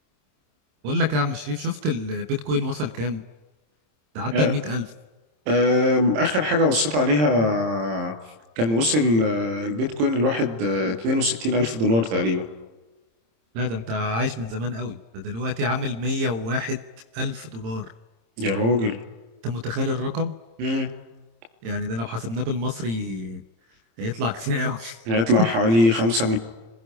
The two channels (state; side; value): late; left; 26 ms